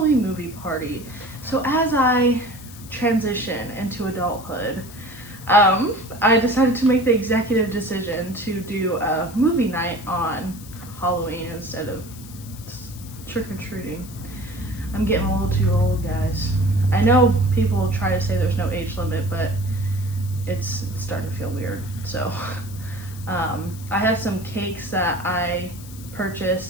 movie party. So as I transition into adulthood, I decided to make the executive decision to do a movie night on Halloween instead of trick-or-treating. I'm getting a little too old, guys. I know people try to say there's no age limit, but it's starting to feel weird. So I have some cakes that I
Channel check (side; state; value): left; noise; hiss, 18 dB below the sound